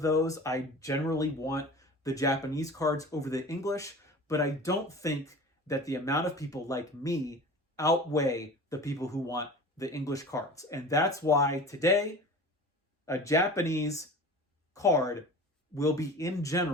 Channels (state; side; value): normal; both; correlation 0.37